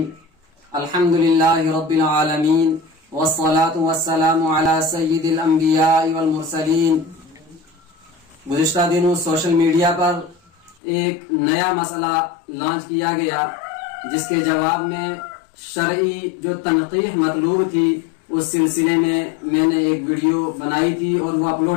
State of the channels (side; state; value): right; drops out; at 10.8 s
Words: الحمد للہ رب العالمین والصلاة والسلام علی سید الانبیاء والمرسلین۔ گزشتہ دنوں سوشل میڈیا پر ایک نیا مسئلہ لانچ کیا گیا جس کے جواب میں شرعی جو تنقیح مطلوب تھی اس سلسلے میں نے ایک ویڈیو بنائی تھی اور وہ